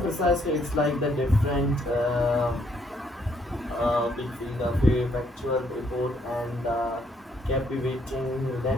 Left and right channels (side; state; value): both; normal; correlation 0.70